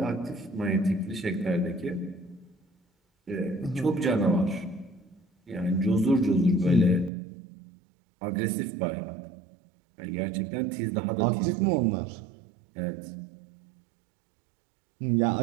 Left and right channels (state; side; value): drops out; left; at 7.1 s